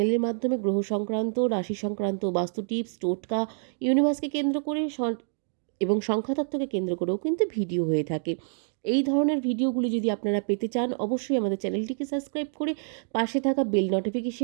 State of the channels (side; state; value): left; silent; digital silence